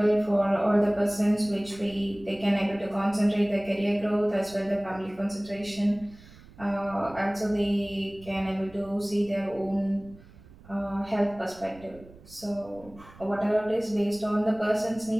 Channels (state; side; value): noise; right; rumble, 22 dB below the sound